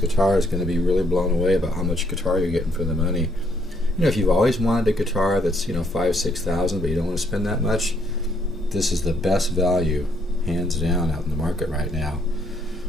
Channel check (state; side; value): normal; both; correlation 0.70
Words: is going to be really blown away about how much guitar you're getting for the money. You know, if you've always wanted a guitar that's, you know, $5,000-$6,000, but you don't want to spend that much, this is the best value, hands down, out in the market right now